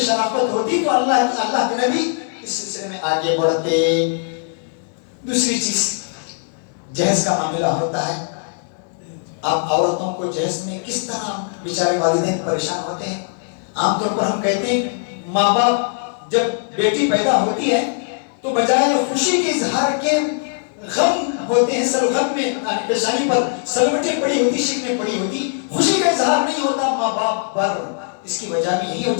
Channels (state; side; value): silent; right; digital silence